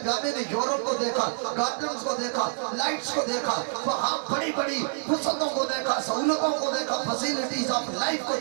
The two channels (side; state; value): left; silent; 56 dB below the other